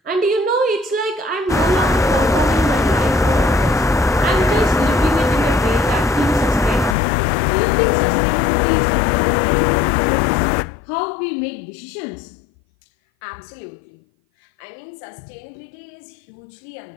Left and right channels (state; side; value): drops out; right; at 7.0 s